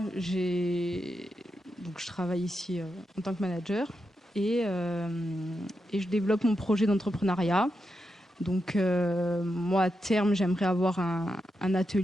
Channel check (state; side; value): normal; both; correlation 0.86